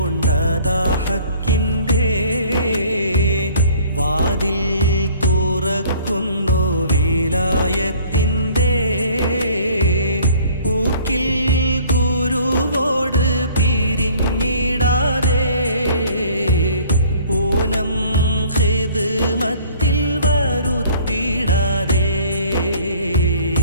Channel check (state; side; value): inverted; both; correlation -0.53